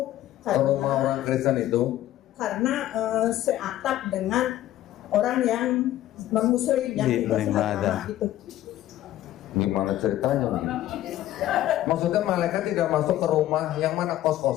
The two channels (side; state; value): right; quieter; 13.7 dB